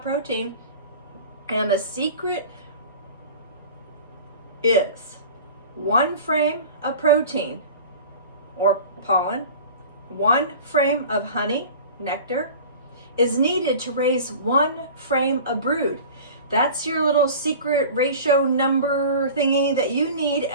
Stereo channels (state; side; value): inverted; both; correlation -0.39